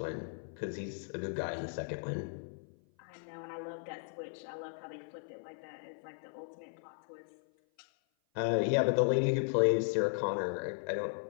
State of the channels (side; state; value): right; silent; 54 dB below the other